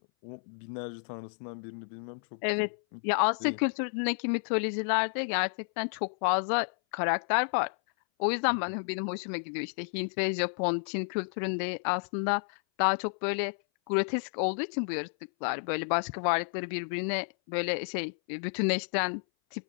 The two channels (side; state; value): right; silent; 57 dB below the other